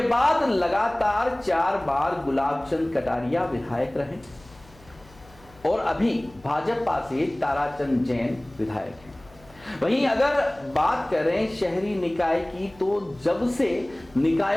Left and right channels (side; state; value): left; noise; hum, 25 dB below the sound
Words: बाद लगातार 4 बार गुलाब चंद कटारिया विधायक रहे और अभी भाजपा से ताराचंद जैन विधायक हैं। वहीं अगर बात करें शहरी निकाय की, तो जब से